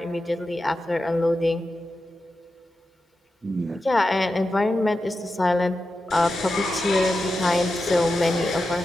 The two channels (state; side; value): normal; both; correlation 0.90